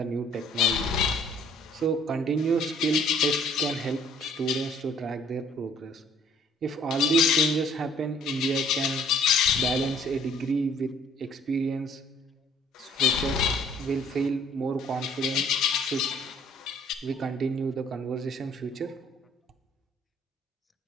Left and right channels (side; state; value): both; normal; correlation 0.58